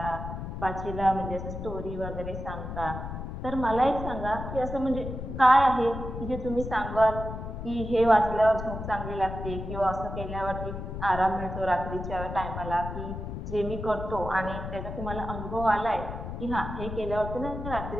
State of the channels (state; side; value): noise; left; rumble, 7 dB below the sound